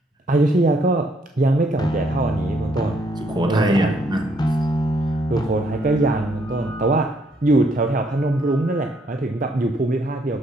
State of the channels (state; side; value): normal; both; correlation 0.70